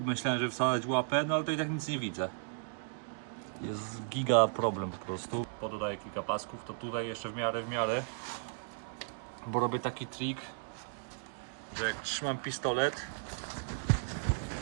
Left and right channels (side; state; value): left; silent; digital silence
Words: myślałem, że wsadzać łapę, no ale to i tak nic nie widzę. Jest giga problem po prostu. Pododaję kilka pasków, to tutaj jeszcze w miarę. Bo robię taki trik, że jak trzymam pistolet,